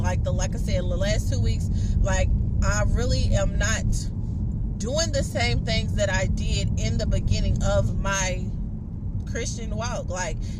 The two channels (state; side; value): identical; both; correlation 1.00